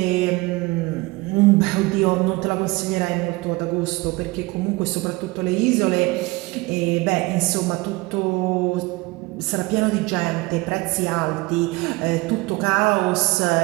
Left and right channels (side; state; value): left; quieter; 22.9 dB